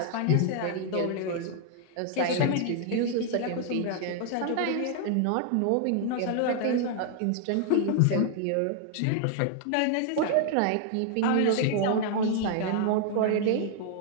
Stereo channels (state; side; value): different; both; correlation 0.00